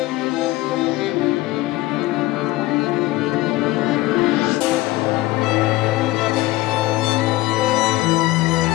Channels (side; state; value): right; quieter; 18.7 dB